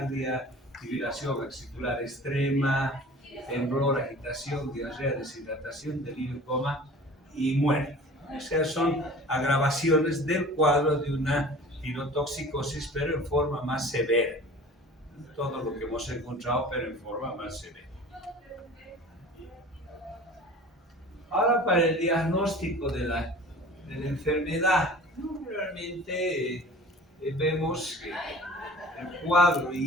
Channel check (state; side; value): normal; both; correlation 0.42